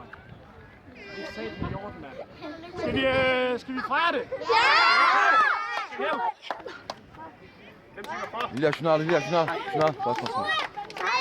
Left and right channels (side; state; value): both; identical; correlation 1.00